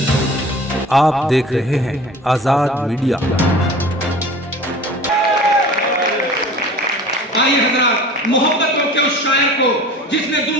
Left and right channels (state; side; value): normal; both; correlation 0.42